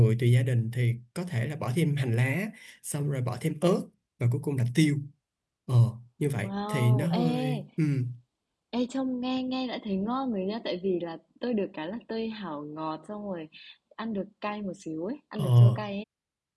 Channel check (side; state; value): both; identical; correlation 1.00